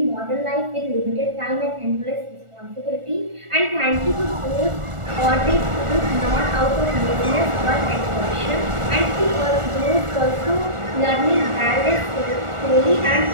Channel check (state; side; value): late; left; 1.4 ms